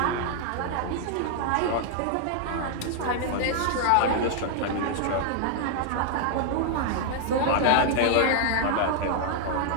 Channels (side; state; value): both; different; correlation 0.00